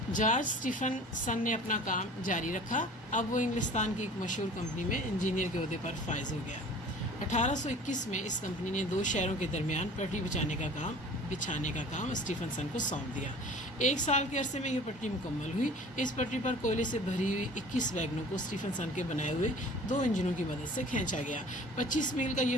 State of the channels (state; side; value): normal; both; correlation 0.45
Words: جارج اسٹیفن سن نے اپنا کام جاری رکھا۔ اب وہ انگلستان کی ایک مشہور کمپنی میں انجینئر کے عہدے پر فائز ہو گیا۔ 1821 میں اس کمپنی نے 2 شہروں کے درمیان پٹری بچھانے کا کام اسٹیفن سن کو سونپ دیا۔ 1 سال کے عرصے میں یہ پٹری مکمل ہوئی۔ اس پٹری پر کوئلے سے بھری ہوئی 21 ویگنوں کو اسٹیفن سن کے بنائے ہوئے 2 انجنوں کی مدد سے کھینچا گیا۔ 25 میل کا یہ